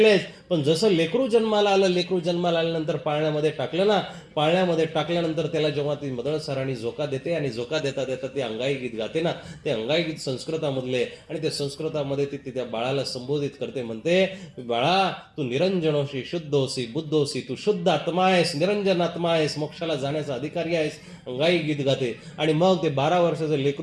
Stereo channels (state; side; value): identical; both; correlation 1.00